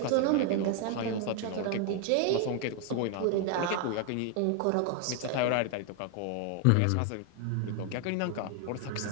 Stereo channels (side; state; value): both; different; correlation 0.01